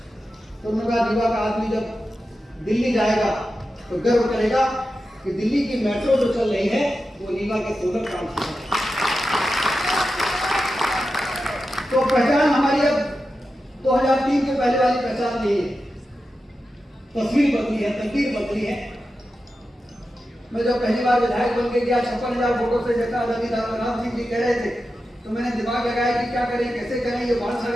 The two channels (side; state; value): both; normal; correlation 0.91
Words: तो उन्होंने कहा रीवा का आदमी जब दिल्ली जाएगा तो गर्व करेगा कि दिल्ली की मेट्रो जो चल रही है वो रीवा के सोलर काम से है। तो पहचान हमारी अब 2003 के पहले वाली पहचान नहीं है, तस्वीर बदली है, तकदीर बदली है। मैं जब पहली बार विधायक बन के गया 56,000 वोटों से, जैसा आजादी राम सिंह जी कह रहे थे, तो मैंने दिमाग लगाया कि क्या करें, कैसे करें, ये बाल